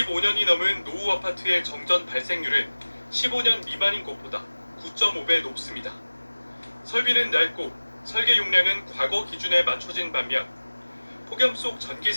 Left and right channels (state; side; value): inverted; both; correlation -1.00